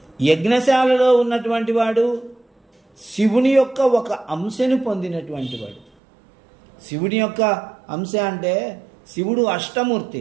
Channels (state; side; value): drops out; left; at 5.9 s